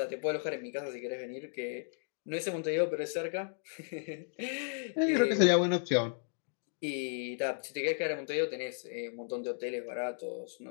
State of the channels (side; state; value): right; silent; digital silence